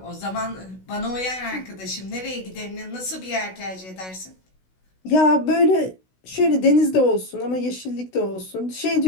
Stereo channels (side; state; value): right; late; 16 ms